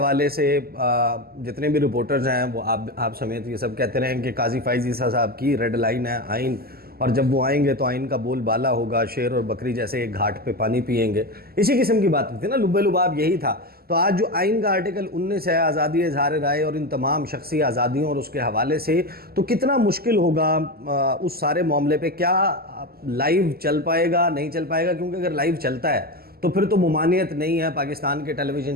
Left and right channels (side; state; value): left; late; 0.45 ms